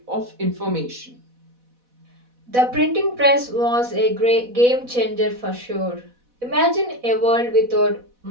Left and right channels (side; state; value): left; late; 4.1 ms